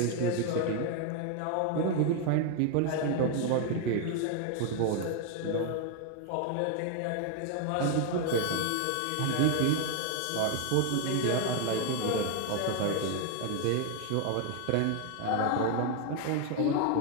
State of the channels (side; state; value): both; different; correlation 0.01